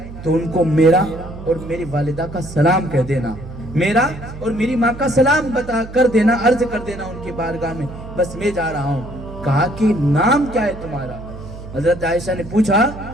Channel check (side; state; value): right; noise; hum, 13 dB below the sound